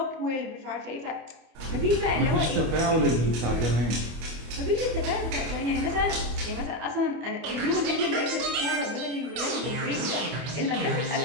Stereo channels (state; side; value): late; left; 25 ms